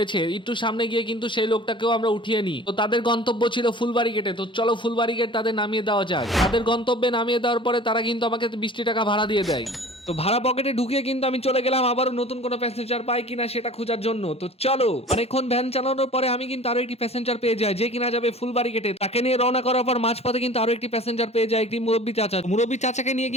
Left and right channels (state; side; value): normal; both; correlation 0.43